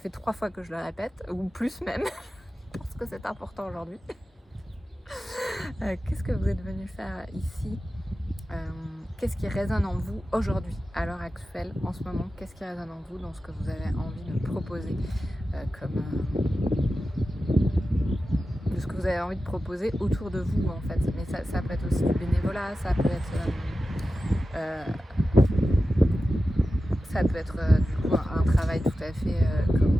3 fois que je le répète, ou plus même, parce que c'est important aujourd'hui. Qu'est-ce que vous êtes venu faire ici? Qu'est-ce qui résonne en vous aujourd'hui, à l'heure actuelle, en ce moment? Qu'est-ce qui résonne en vous dans ce que vous avez envie de proposer de ce que vous avez envie de proposer autour de vous en fait. Mais ça peut être aussi du bénévolat, ça peut être du coup un travail tout à fait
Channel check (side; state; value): both; normal; correlation 0.93